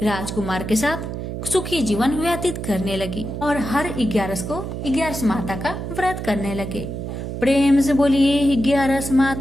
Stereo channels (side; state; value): right; noise; hum, 6 dB below the sound